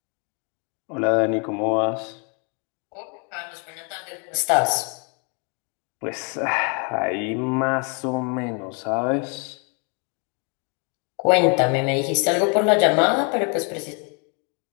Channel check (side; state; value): right; quieter; 36.2 dB